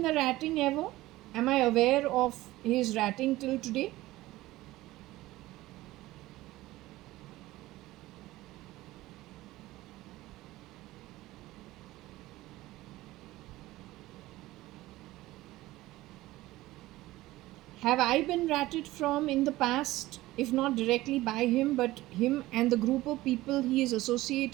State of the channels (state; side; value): quieter; left; 17.5 dB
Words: the ratting ever? Am I aware of his ratting till today? Have I been ratted from in the past, if not directly by him, but him and the group of people he is